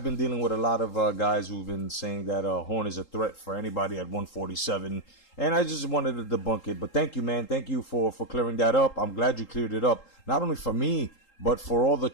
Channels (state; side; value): late; right; 3.8 ms